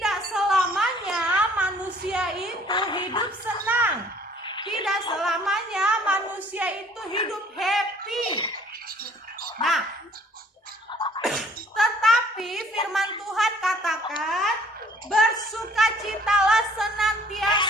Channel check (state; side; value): normal; both; correlation 0.57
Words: selamanya manusia itu hidup senang. Tidak selamanya manusia itu hidup happy. Nah, tetapi firman Tuhan katakan bersukacitalah